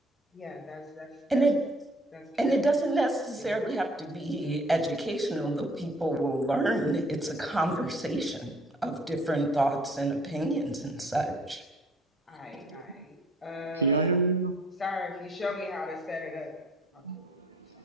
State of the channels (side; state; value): both; normal; correlation 0.58